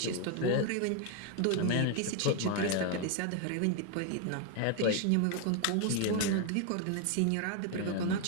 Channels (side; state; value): both; different; correlation 0.01